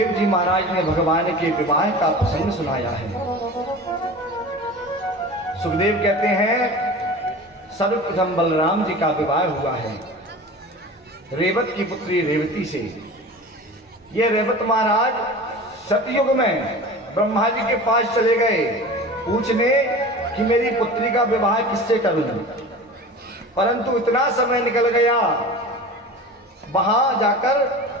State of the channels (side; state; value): both; normal; correlation 0.35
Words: जी महाराज ने भगवान के विवाह का प्रसंग सुनाया है। सुखदेव कहते हैं सर्वप्रथम बलराम जी का विवाह हुआ है रेवत की पुत्री रेवती से। ये रेवत महाराज सतयुग में ब्रह्मा जी के पास चले गए पूछने कि मेरी पुत्री का विवाह किससे करूं, परंतु इतना समय निकल गया वहां जाकर